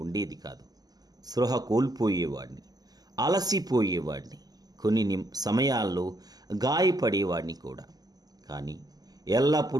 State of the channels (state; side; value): late; left; 0.19 ms